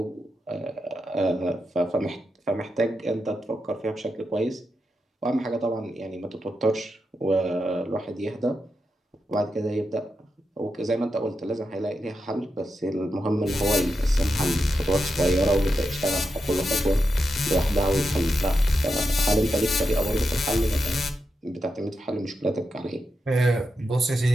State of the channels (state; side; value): normal; both; correlation 0.87